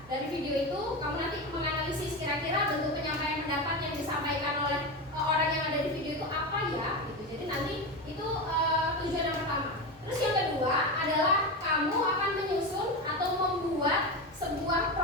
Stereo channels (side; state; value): both; normal; correlation 0.19